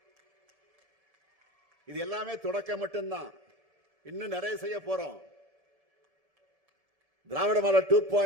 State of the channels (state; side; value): late; left; 1.7 ms